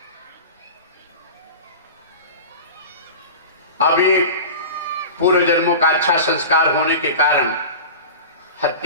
अभी पूर्व जन्मों का अच्छा संस्कार होने के कारण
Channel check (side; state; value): both; inverted; correlation -0.33